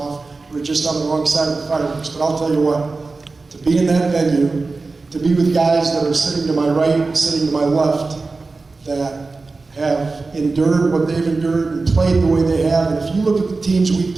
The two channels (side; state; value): left; quieter; 3.8 dB